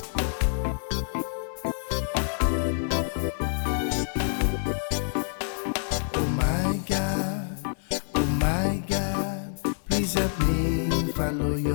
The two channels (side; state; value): right; silent; 60 dB below the other